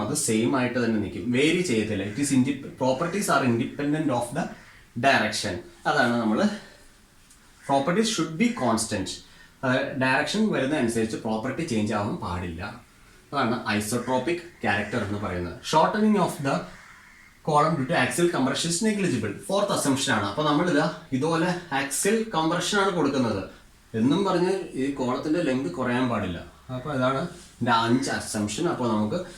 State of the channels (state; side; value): identical; both; correlation 1.00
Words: അത് സെയിം ആയിട്ട് തന്നെ നിൽക്കും, വേരി ചെയ്യത്തില്ല. It is properties are independent of the direction. അതാണ് നമ്മൾ properties should be constant. Direction വരുന്ന അനുസരിച്ച് പ്രോപ്പർട്ടി ചേഞ്ച് ആവാൻ പാടില്ല. അതാണ് ഐസോട്രോപിക് ക്യാരക്ടർ എന്ന് പറയുന്നത്. Shortening of the column due to axial compression is negligible. Fourth assumption ആണ്. അപ്പോൾ നമ്മളിതാ ഇതുപോലെ ആക്സിയൽ കംപ്രഷൻ ആണ് കൊടുക്കുന്നത് എന്നും പറഞ്ഞ് ഈ കോളത്തിന്റെ ലെങ്ത് കുറയാൻ പാടില്ല. അപ്പോൾ അതാണ് ഇതിന്റെ 5 അസംപ്ഷൻ. അപ്പോൾ നമുക്ക്